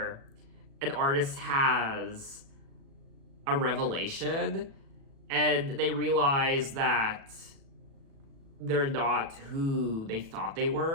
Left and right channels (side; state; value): left; late; 36 ms